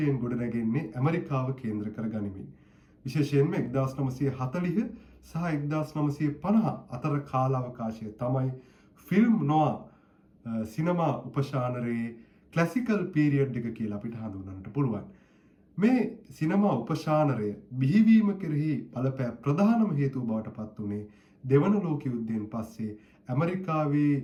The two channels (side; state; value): both; identical; correlation 1.00